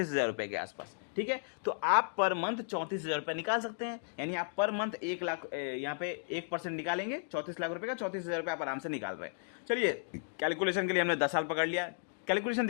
रुपए के आसपास। ठीक है, तो आप पर मंथ 34,000 रुपए निकाल सकते हैं, यानी आप पर मंथ 1 लाख, यहाँ पे 1% निकालेंगे 34 लाख रुपए का, 34,000 रुपए आप आराम से निकाल रहे हैं। चलिए कैलकुलेशन के लिए हमने 10 साल पकड़ लिया। कैलकुलेशन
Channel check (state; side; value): silent; right; digital silence